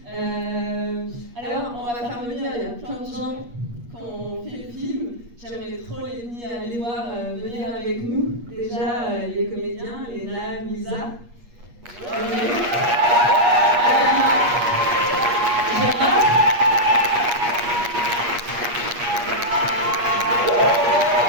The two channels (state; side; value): late; left; 8.4 ms